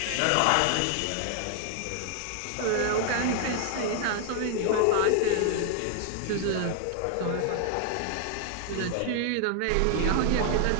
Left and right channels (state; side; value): different; both; correlation 0.00